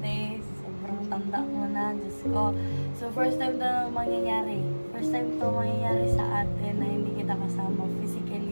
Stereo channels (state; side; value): inverted; both; correlation -1.00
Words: Sobrang tanda mo na. Diyos ko. So, first time to mangyayari. First time to mangyayari sa atin na hindi kita kasama